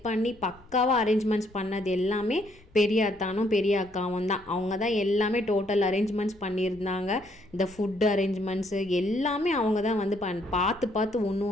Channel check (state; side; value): noise; left; rumble, 29 dB below the sound